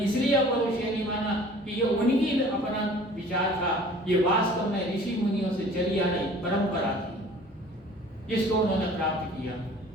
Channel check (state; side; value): normal; both; correlation 0.48